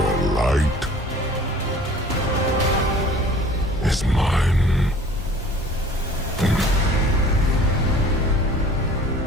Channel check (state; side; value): normal; both; correlation 0.48